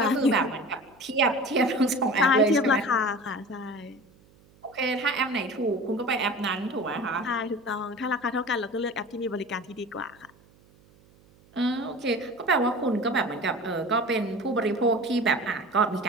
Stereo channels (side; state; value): right; noise; hum, 29 dB below the sound